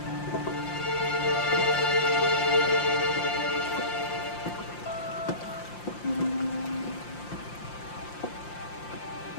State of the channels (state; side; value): late; right; 5.7 ms